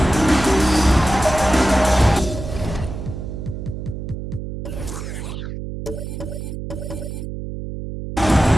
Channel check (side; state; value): right; noise; hum, 7 dB below the sound